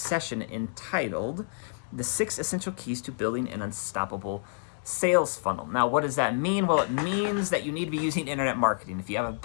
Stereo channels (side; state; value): right; silent; digital silence